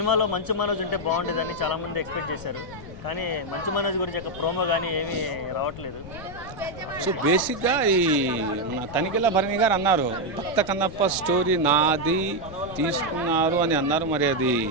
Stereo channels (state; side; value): noise; left; rumble, 14 dB below the sound